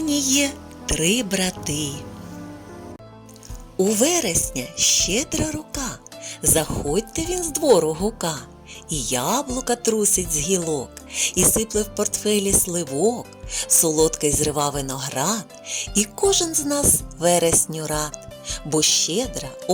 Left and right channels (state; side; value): identical; both; correlation 1.00